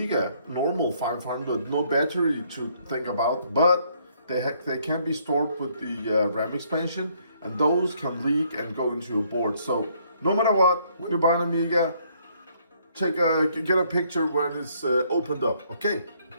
normal 500, no battery to think about, but they can be stored with the RAM expansion, and those can leak and go into your board. So no matter what, when you buy an Amiga, get a picture when it's opened up, okay?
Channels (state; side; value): inverted; both; correlation -0.67